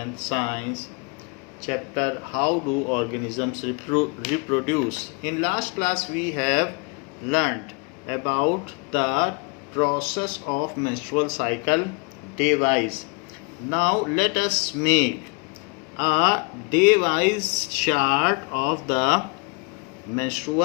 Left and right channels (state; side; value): quieter; right; 32.4 dB